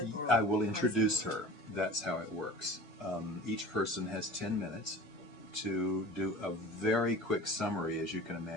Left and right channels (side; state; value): both; normal; correlation 0.40